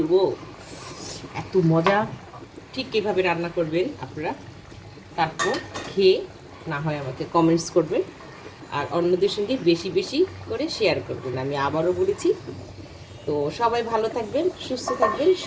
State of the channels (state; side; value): identical; both; correlation 1.00